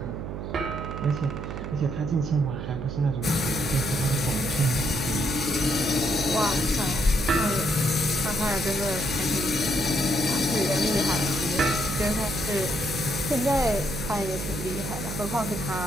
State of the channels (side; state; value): right; noise; hum, 6 dB below the sound